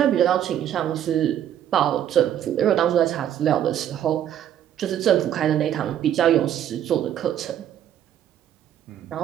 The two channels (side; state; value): left; quieter; 10.6 dB